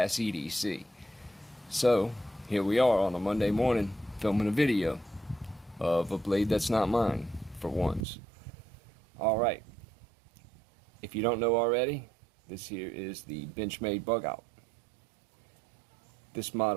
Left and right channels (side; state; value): left; drops out; at 8.1 s